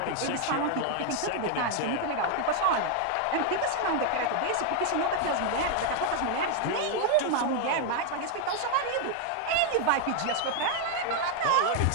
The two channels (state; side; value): different; both; correlation 0.00